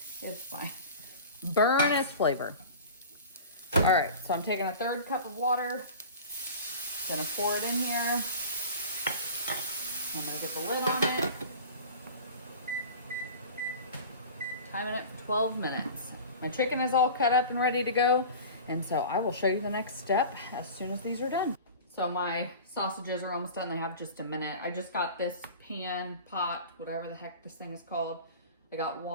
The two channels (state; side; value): inverted; both; correlation -0.37